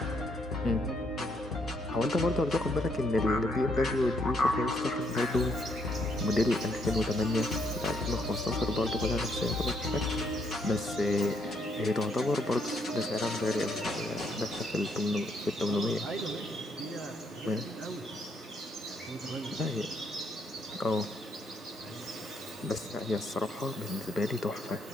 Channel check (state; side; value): normal; both; correlation 0.73